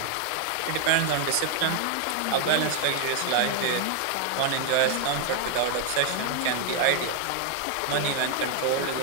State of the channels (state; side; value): different; both; correlation 0.00